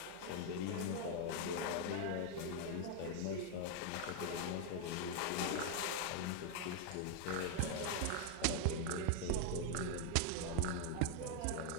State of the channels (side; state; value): both; different; correlation 0.01